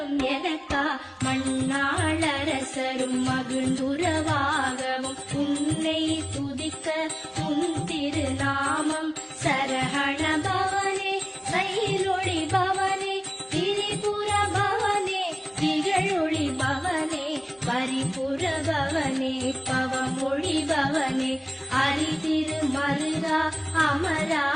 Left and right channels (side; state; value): both; identical; correlation 1.00